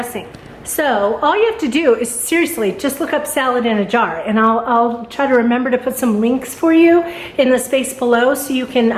So all you have to do is seriously just look up salad in a jar, and I'll try to remember to put some links for you in the space below so you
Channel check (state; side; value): identical; both; correlation 1.00